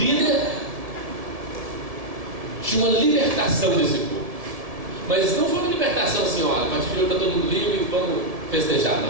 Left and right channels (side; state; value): left; late; 1.7 ms